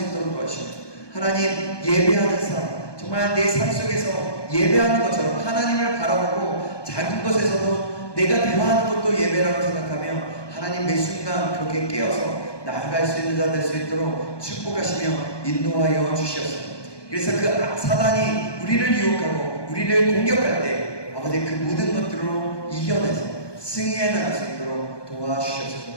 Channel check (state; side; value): late; right; 1.2 ms